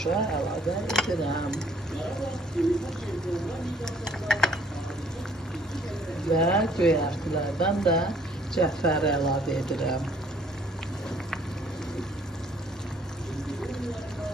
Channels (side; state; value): both; normal; correlation 0.60